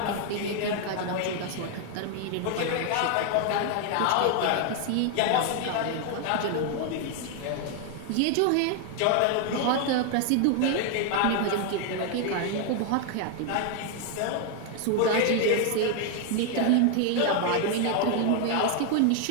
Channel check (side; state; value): both; different; correlation 0.01